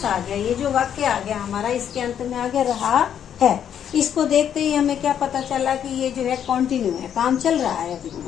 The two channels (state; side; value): quieter; right; 9.1 dB